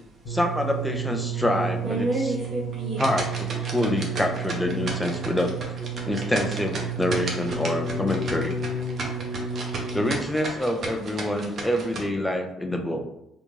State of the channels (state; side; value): normal; both; correlation 0.69